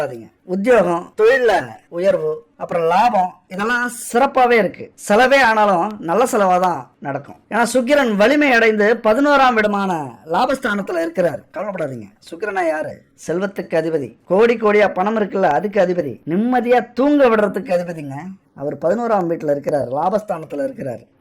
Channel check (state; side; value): identical; both; correlation 1.00